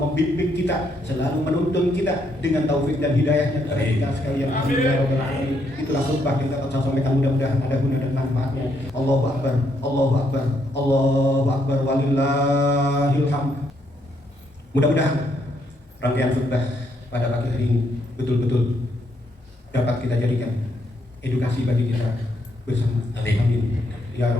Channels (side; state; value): both; normal; correlation 0.74